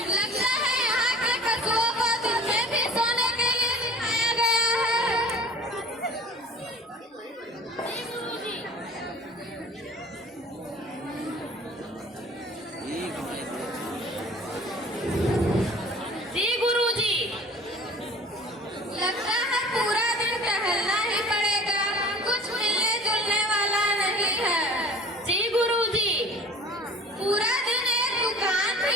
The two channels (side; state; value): both; normal; correlation 0.45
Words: लगता है यहाँ के पशुओं को दिन में भी सोने के लिए सिखाया गया है। जी गुरुजी, लगता है पूरा दिन टहलना ही पड़ेगा, कुछ मिलने जुलने वाला नहीं है। जी गुरुजी, पूरा दिन एक दुकान भी